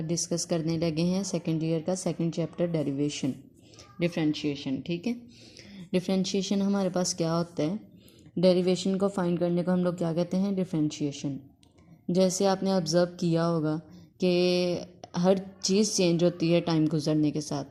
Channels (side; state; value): both; identical; correlation 1.00